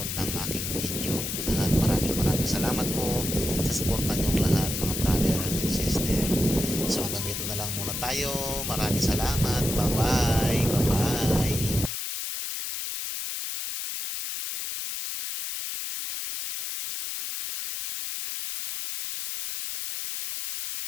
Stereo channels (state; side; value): noise; left; hiss, 4 dB below the sound